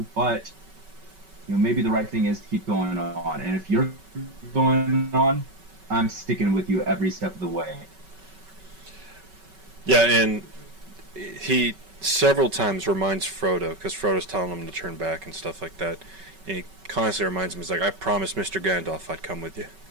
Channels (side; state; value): left; late; 5.3 ms